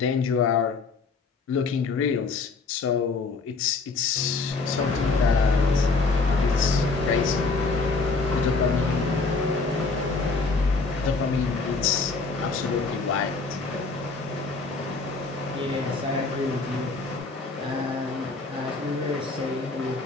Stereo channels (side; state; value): right; quieter; 4.1 dB